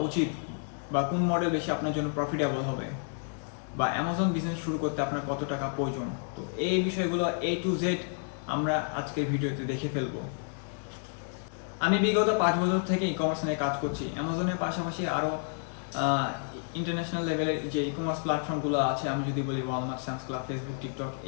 উচিত, বা কোন মডেল বেশি আপনার জন্য প্রফিটেবল হবে, বা অ্যামাজন বিজনেস শুরু করতে আপনার কত টাকা প্রয়োজন। তো এই বিষয়গুলো A to Z আমরা আজকের ভিডিওতে দেখে ফেলবো। আমি বিগত 5 বছর থেকে ই কমার্স নিয়ে কাজ করছি। অ্যামাজনের পাশাপাশি আরও ইন্টারন্যাশনাল লেভেলের যে ই কমার্স প্ল্যাটফর্মগুলো আছে, আমি যদি বলি Walmart, Sam's club, Facebook, TikTok,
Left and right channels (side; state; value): right; silent; 58 dB below the other